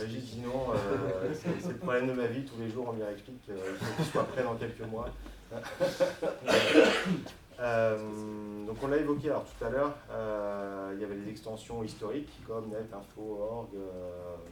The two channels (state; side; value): identical; both; correlation 1.00